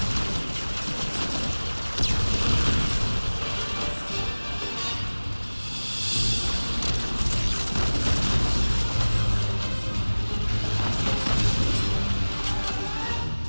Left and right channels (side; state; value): both; inverted; correlation -1.00